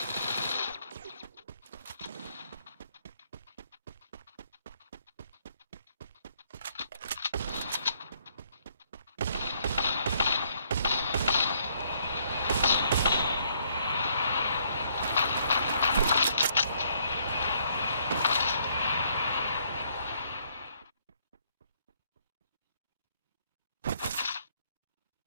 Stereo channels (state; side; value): inverted; both; correlation -0.68